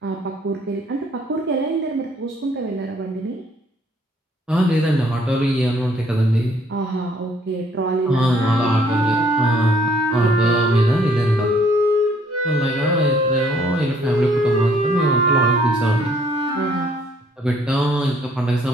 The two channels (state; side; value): normal; both; correlation 0.63